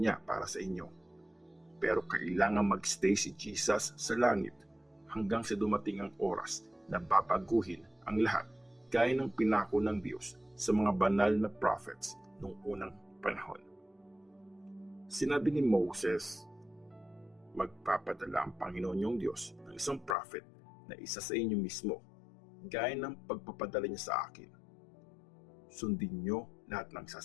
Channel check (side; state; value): right; drops out; at 20.2 s